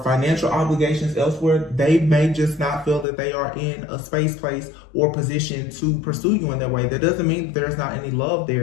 financial obligations elsewhere, they may just not feel that they are in a space, place, or position to pursue you in that way. That doesn't mean that there's not any love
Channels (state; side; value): drops out; right; at 3.1 s